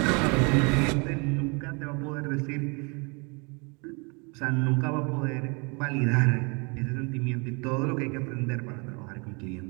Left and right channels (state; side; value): quieter; left; 31.6 dB